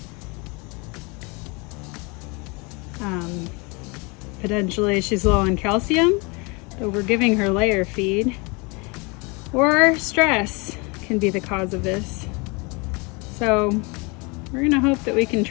Potentially she's low on calcium, but we're giving her layer feed. Or stress can be the cause of this. So we're gonna hope that we can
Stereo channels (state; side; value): quieter; right; 29.1 dB